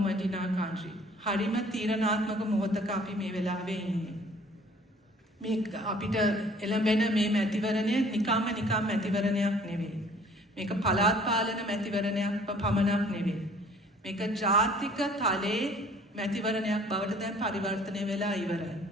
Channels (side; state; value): both; normal; correlation 0.54